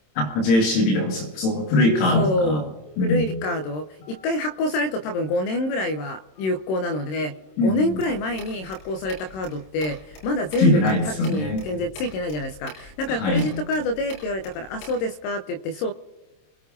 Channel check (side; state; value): right; late; 26 ms